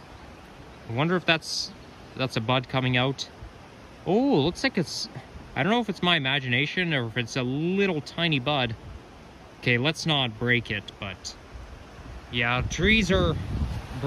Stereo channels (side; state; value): both; identical; correlation 1.00